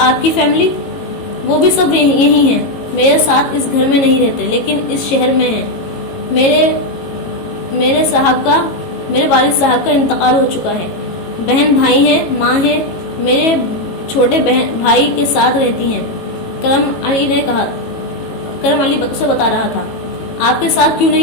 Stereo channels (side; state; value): right; late; 18 ms